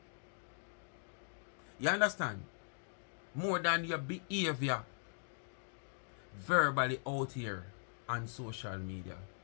You understand? More than your behavior verbally out here on social media.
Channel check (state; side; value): silent; right; digital silence